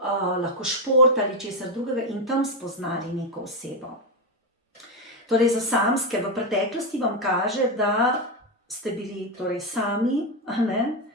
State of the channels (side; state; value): both; normal; correlation 0.09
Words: lahko šport ali česar drugega in tam spoznali neko osebo. Torej, za samske v preteklosti vam kaže, da ste bili torej sami,